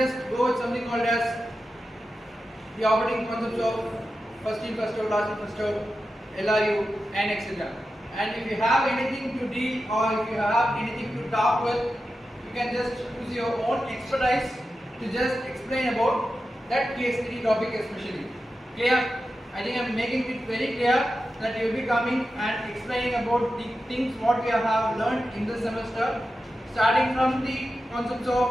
go with something called as the operating concepts of first in, first out, last in, first out, LRU and etc. And if you have anything to deal or if you have anything to talk with, you can just use your own expertise to just explain about that case study topic especially. Clear? I think I am making it very clear that you will be coming and explaining about the things what we have learned in this semester, starting from the concepts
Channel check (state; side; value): normal; both; correlation 0.91